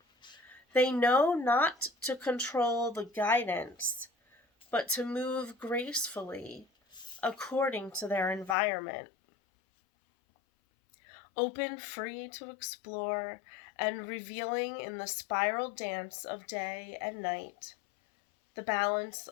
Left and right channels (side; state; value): right; drops out; at 8.6 s